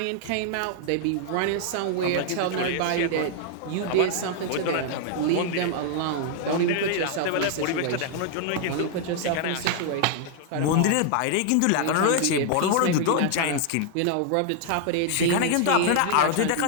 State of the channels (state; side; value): different; both; correlation 0.00